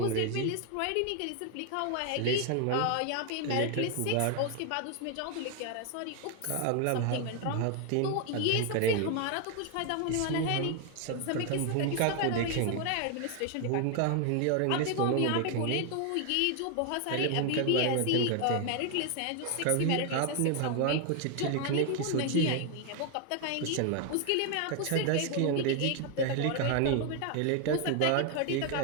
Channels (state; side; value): different; both; correlation 0.01